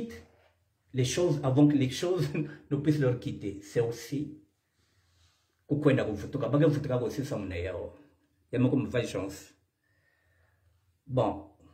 les choses avant que les choses ne puissent leur quitter. C'est aussi bon,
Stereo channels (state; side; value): identical; both; correlation 1.00